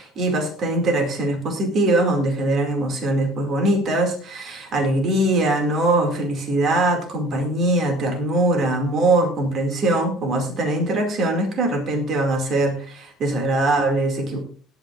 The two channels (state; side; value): normal; both; correlation 0.50